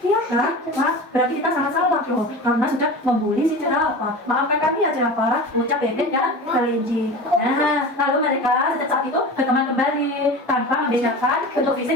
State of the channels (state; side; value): normal; both; correlation 0.32